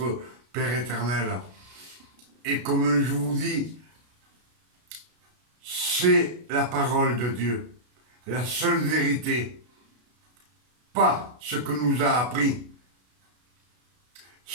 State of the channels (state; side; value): late; left; 33 ms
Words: Père éternel. Et comme je vous dis, c'est la parole de Dieu, la seule vérité, pas ce que nous a appris,